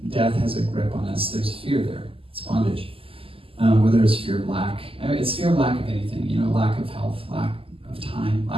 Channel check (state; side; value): late; left; 0.26 ms